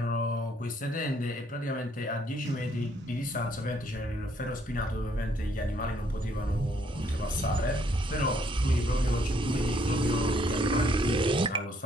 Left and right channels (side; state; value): both; normal; correlation 0.68